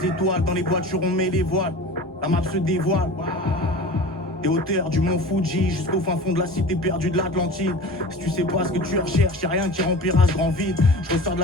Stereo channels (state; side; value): normal; both; correlation 0.36